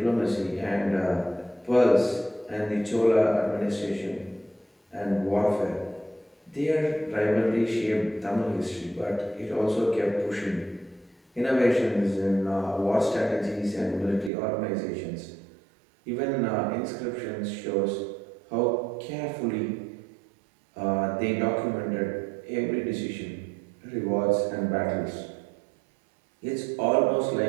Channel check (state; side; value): drops out; left; at 14.3 s